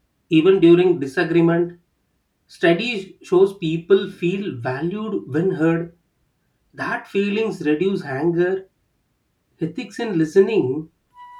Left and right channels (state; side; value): identical; both; correlation 1.00